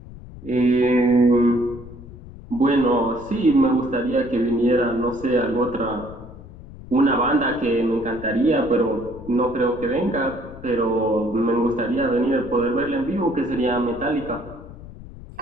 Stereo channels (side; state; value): left; noise; rumble, 16 dB below the sound